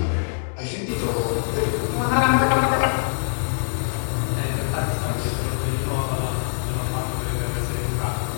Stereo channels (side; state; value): right; silent; digital silence